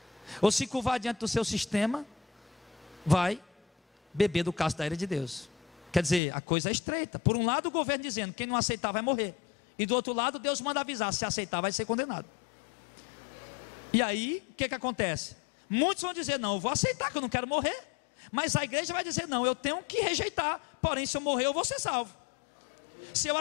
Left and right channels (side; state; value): right; drops out; at 6.2 s